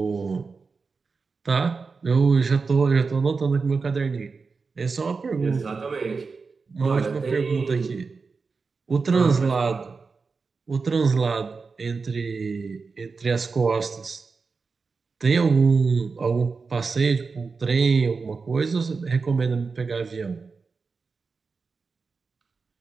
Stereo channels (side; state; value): left; quieter; 4.6 dB